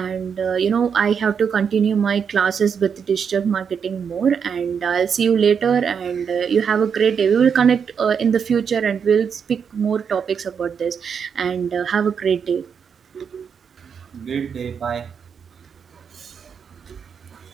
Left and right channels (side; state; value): left; quieter; 6.8 dB